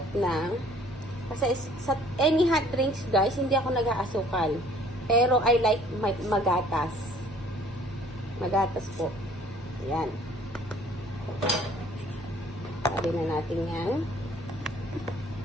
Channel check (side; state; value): both; normal; correlation 0.56